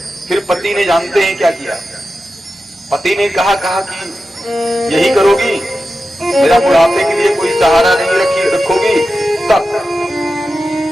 फिर पति ने जानते हैं क्या किया? पति ने कहा कि यही करोगी, मेरा बुढ़ापे के लिए कोई सहारा नहीं रखोगी तब?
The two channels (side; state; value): both; normal; correlation 0.91